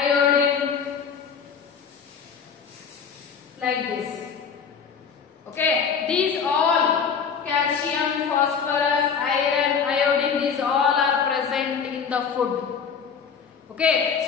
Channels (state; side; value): quieter; right; 6.5 dB